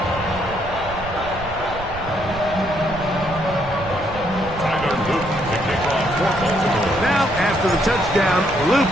Now, after the touchdown, Luke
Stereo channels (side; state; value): right; noise; rumble, 12 dB below the sound